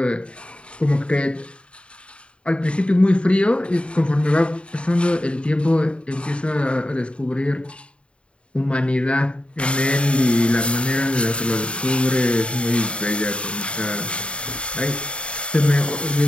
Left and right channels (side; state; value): right; late; 0.058 ms